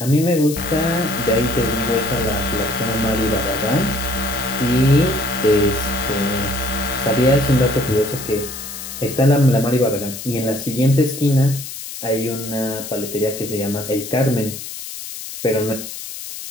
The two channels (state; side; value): noise; left; hiss, 10 dB below the sound